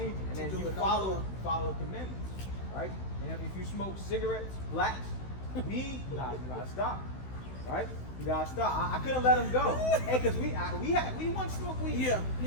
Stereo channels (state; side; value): late; right; 16 ms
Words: it, and then Do you it no follow more. the commandments, right? And if you smoke cigarettes, blacks, weed, you gotta stop, right? You gotta stop. I couldn't let them go. Hey, cause we once smoked weed. Yeah,